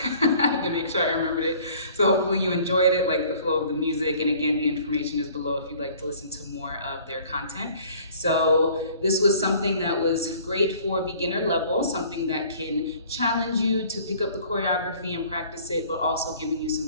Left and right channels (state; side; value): inverted; both; correlation -0.52